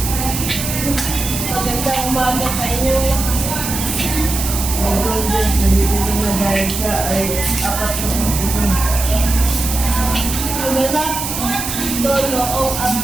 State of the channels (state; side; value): noise; right; hiss, 4 dB below the sound